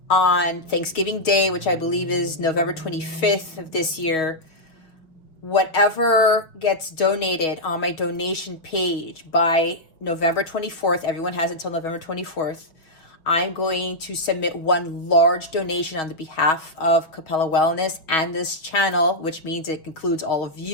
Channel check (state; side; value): late; right; 6.3 ms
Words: Thanksgiving Day, which I believe is November 25th of this year, whatever gets donated on my donation page by November 24th, everyone has until November 24th, I'm going to submit one large donation on the behalf of Capella Wellness and this channel, which means it includes all of